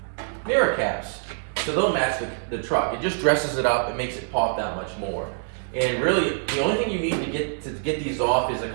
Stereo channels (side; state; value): left; silent; digital silence